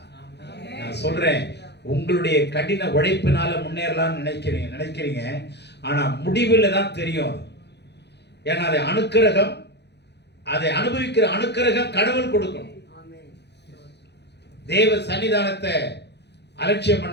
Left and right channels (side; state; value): right; late; 0.50 ms